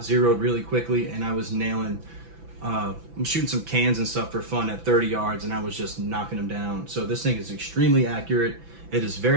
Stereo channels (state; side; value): late; left; 6.0 ms